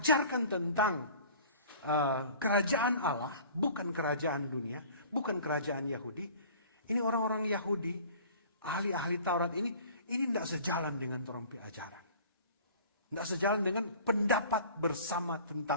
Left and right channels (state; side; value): inverted; both; correlation -0.46